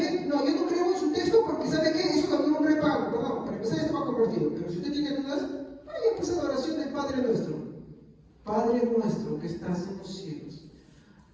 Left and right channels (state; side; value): identical; both; correlation 1.00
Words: No, yo no creo en su texto porque ¿sabe qué? Eso también un repago, perdón, para empezar esto va convertido. Pero si usted tiene dudas, vaya pues a la oración del Padre nuestro. Padre nuestro que estás en los cielos,